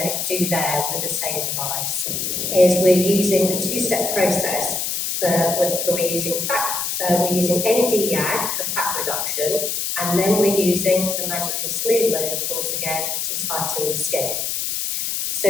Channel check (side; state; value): left; noise; hiss, 1 dB below the sound